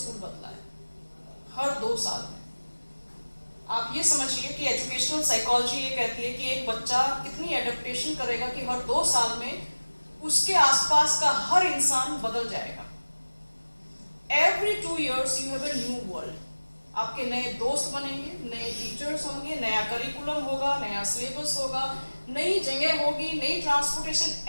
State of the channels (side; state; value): both; inverted; correlation -1.00